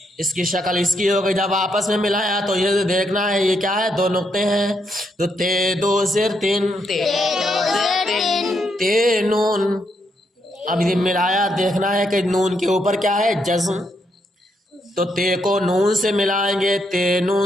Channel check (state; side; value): normal; both; correlation 0.78